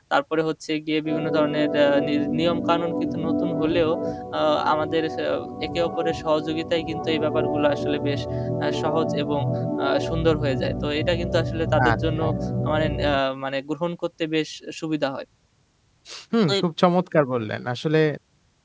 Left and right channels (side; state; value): both; identical; correlation 1.00